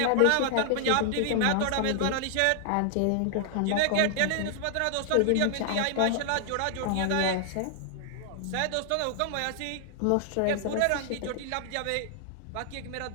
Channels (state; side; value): different; both; correlation 0.00